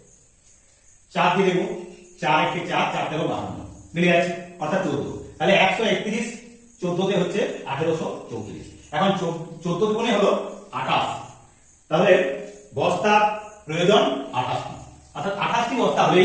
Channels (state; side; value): identical; both; correlation 1.00